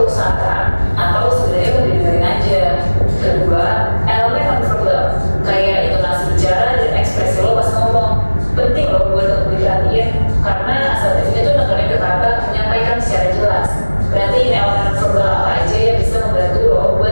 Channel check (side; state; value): both; inverted; correlation -1.00